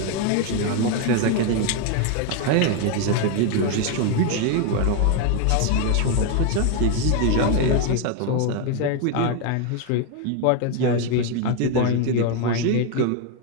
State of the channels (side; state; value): both; different; correlation 0.01